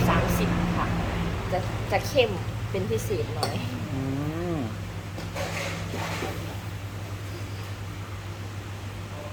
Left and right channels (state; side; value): identical; both; correlation 1.00